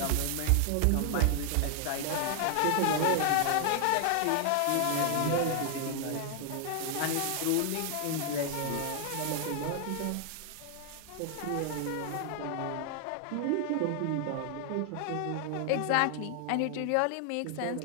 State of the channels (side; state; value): both; different; correlation 0.00